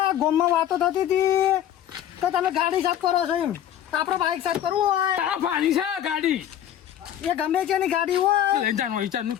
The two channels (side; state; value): right; quieter; 10.8 dB